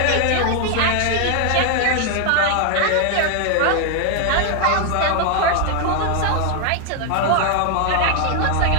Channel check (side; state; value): both; different; correlation 0.00